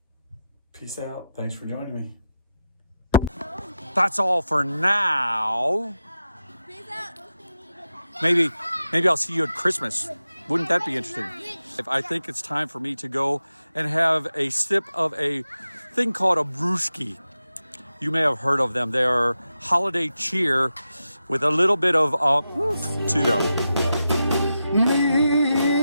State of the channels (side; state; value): both; inverted; correlation -0.89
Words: Peace out. Thanks for joining me. That's all for now. Maybe I'll see you at Christmas. Wouldn't that be interesting? I think it's time for me to go and have a sip of a thing called a brewski. You may have heard of them. They are holiday cheer with a little bit of to them.